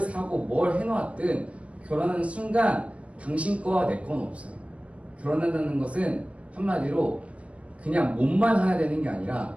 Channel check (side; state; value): left; late; 0.063 ms